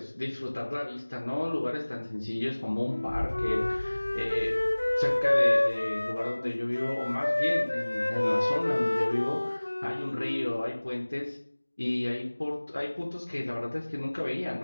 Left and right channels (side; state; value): both; inverted; correlation -1.00